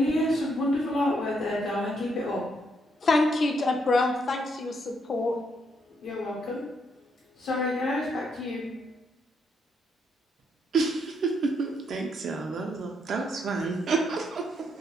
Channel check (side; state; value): both; normal; correlation 0.75